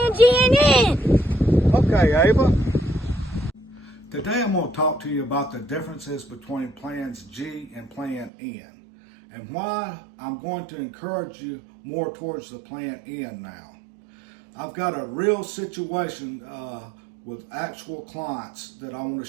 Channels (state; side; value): drops out; left; at 8.3 s